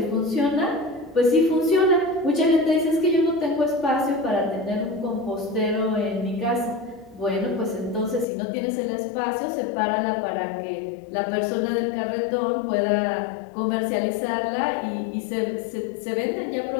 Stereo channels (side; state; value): right; drops out; at 8.2 s